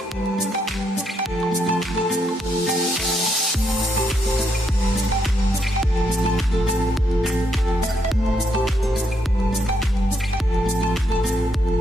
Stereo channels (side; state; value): both; normal; correlation 0.77